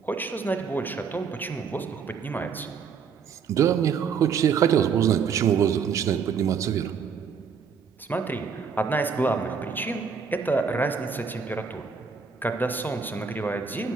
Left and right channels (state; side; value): quieter; left; 6.2 dB